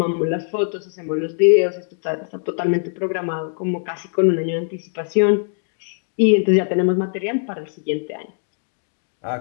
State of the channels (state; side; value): silent; right; digital silence